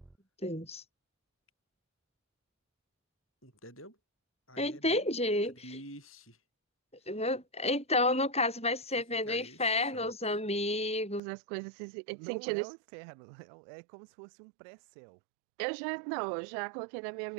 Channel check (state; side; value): drops out; left; at 11.2 s